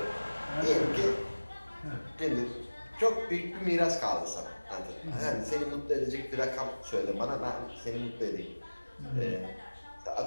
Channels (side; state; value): both; inverted; correlation -1.00